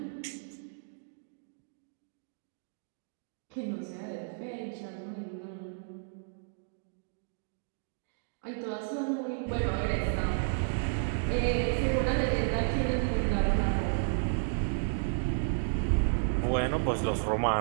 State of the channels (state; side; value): silent; left; digital silence